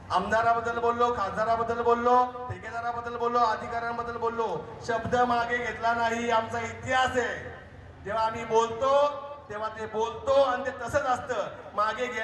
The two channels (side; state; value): both; identical; correlation 1.00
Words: आमदाराबद्दल बोललो, खासदाराबद्दल बोललो, ठेकेदाराबद्दल बोललो, अधिकाऱ्यांबद्दल बोललो, शब्द मागे घेतला नाही. आमचा इतिहास आहे. जेव्हा आम्ही बोलतो तेव्हा ते बोलतो आणि ते तसंच असतं. मागे